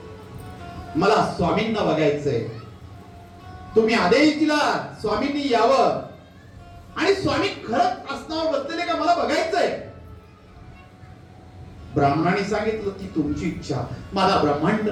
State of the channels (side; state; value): both; identical; correlation 1.00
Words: मला स्वामींना बघायचंय, तुम्ही आदेश दिला स्वामींनी यावं आणि स्वामी खरंच आसनावर बसलेले का मला बघायचंय. ब्राह्मणाने सांगितलं की तुमची इच्छा, माझा ब्रह्मांड